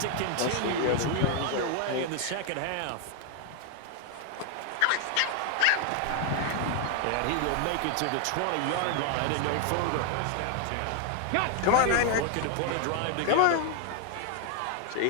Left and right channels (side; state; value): both; different; correlation 0.00